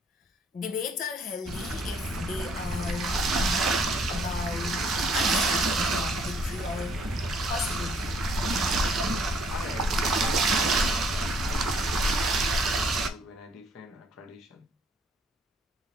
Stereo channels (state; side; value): normal; both; correlation 0.63